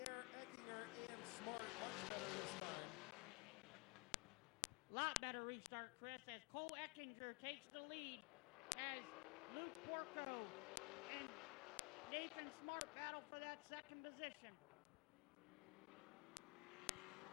air, Eckinger and Smart. Lot better restart, Chris, as Cole Eckinger takes the lead as Luke Porco and Nathan Smart battle for that second position.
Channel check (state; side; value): quieter; right; 29.5 dB